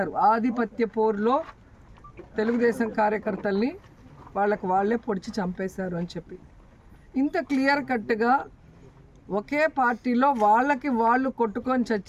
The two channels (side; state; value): both; identical; correlation 1.00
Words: ఆధిపత్య పోరులో తెలుగుదేశం కార్యకర్తల్ని వాళ్ళే పొడిచి చంపేశారు అని చెప్పి. ఇంత క్లియర్ కట్గా ఒకే పార్టీలో వాళ్ళకి వాళ్ళు కొట్టుకొని